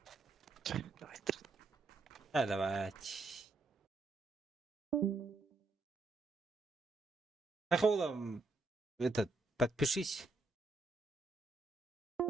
Hadi bak. Ахола, этот, подпишись.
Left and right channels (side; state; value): left; quieter; 3.4 dB